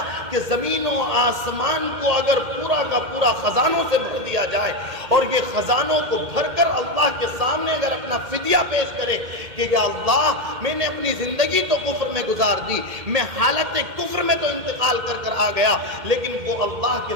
کہ زمین و آسمان کو اگر پورا کا پورا خزانوں سے بھر دیا جائے اور یہ خزانوں کو بھر کر اللہ کے سامنے اگر اپنا فدیہ پیش کرے کہ یا اللہ میں نے اپنی زندگی تو کفر میں گزار دی، میں حالت کفر میں تو انتقال کر آ گیا، لیکن وہ اللہ کے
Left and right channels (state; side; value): late; left; 2.1 ms